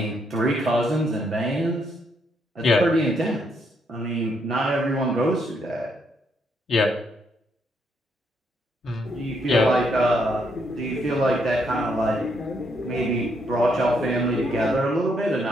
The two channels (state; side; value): normal; both; correlation 0.74